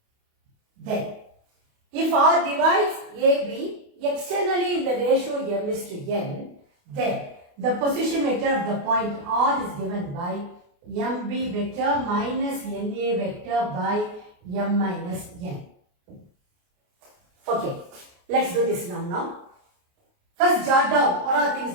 Then, if R divides AB externally in the ratio M is to N, then the position vector of the point R is given by MB vector minus NA vector by M minus N. Okay, let's do this now. First, jot down what are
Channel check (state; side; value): late; left; 28 ms